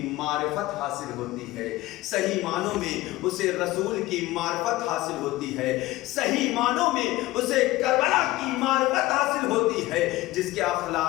معرفت حاصل ہوتی ہے, صحیح معنوں میں اسے رسول کی معرفت حاصل ہوتی ہے, صحیح معنوں میں اسے کربلا کی معرفت حاصل ہوتی ہے. جس کے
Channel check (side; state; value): right; quieter; 18.1 dB